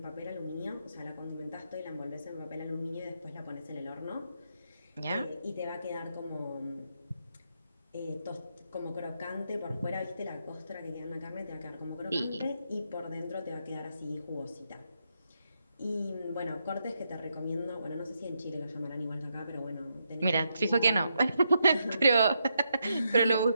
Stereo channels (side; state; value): both; inverted; correlation -0.81